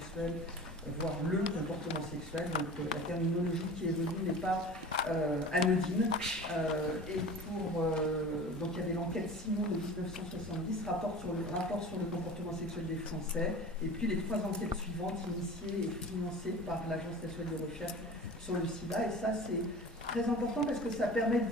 voire le comportement sexuel. Donc, la terminologie qui est venue n'est pas anodine. Donc, il y avait l'enquête Simon de 1970, rapport sur le comportement sexuel des Français, et puis les 3 enquêtes suivantes initiées et financées par l'Agence nationale de recherche sur le sida. Et ça, c'est très important parce que ça permet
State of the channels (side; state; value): both; normal; correlation 0.38